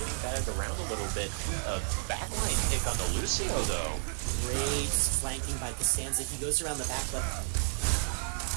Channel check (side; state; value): left; silent; 57 dB below the other